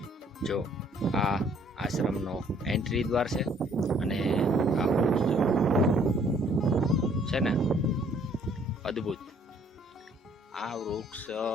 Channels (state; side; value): normal; both; correlation 0.61